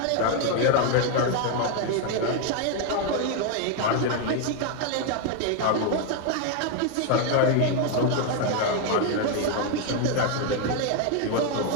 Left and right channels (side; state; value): both; different; correlation 0.01